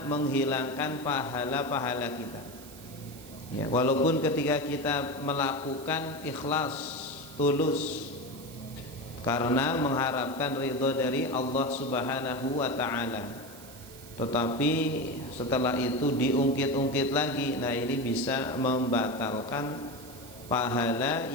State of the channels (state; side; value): noise; right; hiss, 18 dB below the sound